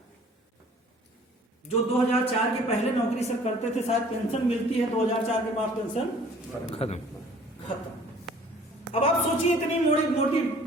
जो 2004 के पहले नौकरी सर करते थे, शायद पेंशन मिलती है, 2004 के बाद पेंशन खत्म। अब आप सोचिए, इतनी मोटी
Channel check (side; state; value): both; normal; correlation 0.52